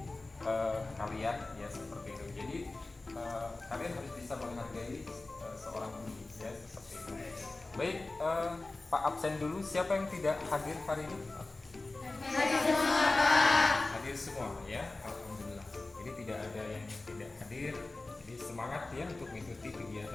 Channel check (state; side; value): quieter; right; 3.2 dB